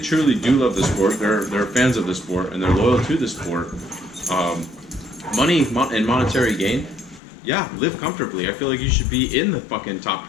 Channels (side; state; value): right; drops out; at 7.2 s